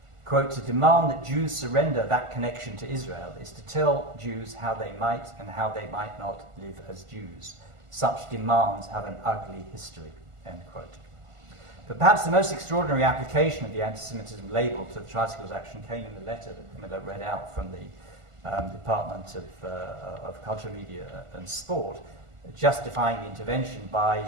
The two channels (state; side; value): late; left; 1.5 ms